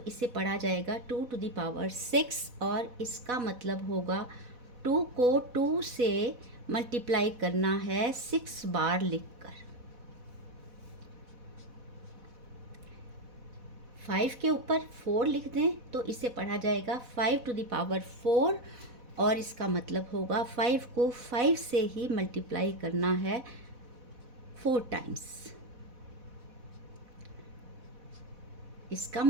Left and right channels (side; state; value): left; late; 4.1 ms